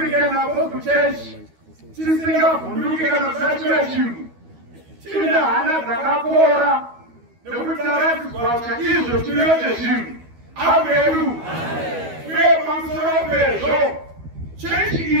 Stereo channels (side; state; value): left; late; 12 ms